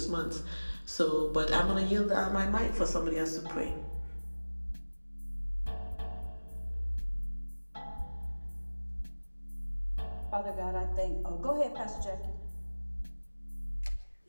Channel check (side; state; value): both; inverted; correlation -1.00